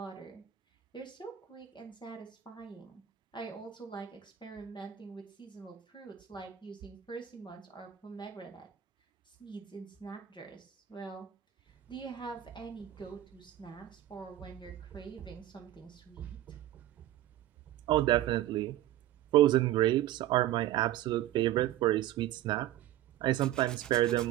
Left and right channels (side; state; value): left; quieter; 13.2 dB